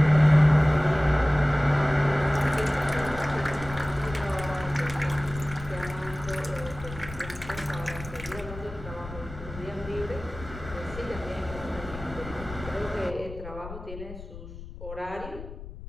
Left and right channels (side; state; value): left; noise; rumble, 13 dB below the sound